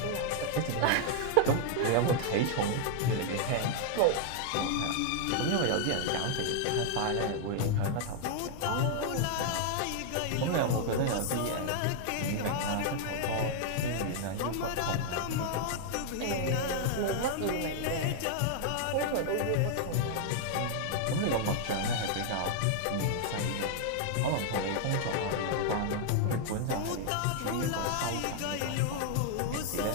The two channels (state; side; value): different; both; correlation 0.00